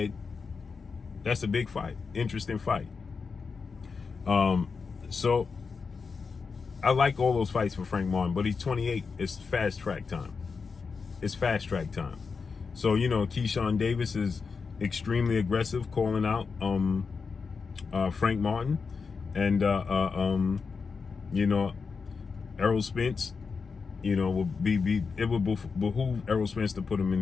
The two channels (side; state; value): right; quieter; 5.1 dB